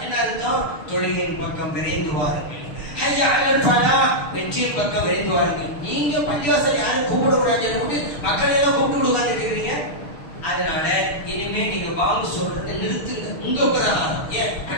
என்ன அர்த்தம்? தொழுகையின் பக்கம் விரைந்து வாருங்கள். ஹய்யா அலல் ஃபலாஹ் வெற்றியின் பக்கம் விரைந்து வாருங்கள். நீங்க பள்ளிவாசல் யாரும் கூப்பிடக்கூடாது, மக்களை எல்லாம் கூப்பிட்டு உட்கார்ந்துருக்கிறீங்க. அதனால இனிமே நீங்க வாங்க சொல்றதை நிறுத்துங்க. உங்க பிரகாரம்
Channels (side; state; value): right; late; 6.5 ms